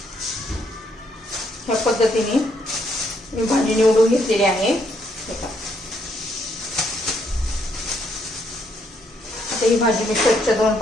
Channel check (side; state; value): both; normal; correlation 0.73